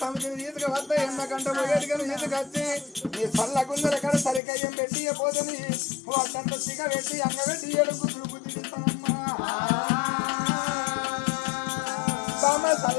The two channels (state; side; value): drops out; right; at 4.4 s